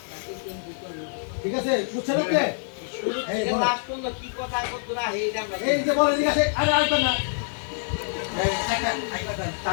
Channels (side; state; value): right; silent; digital silence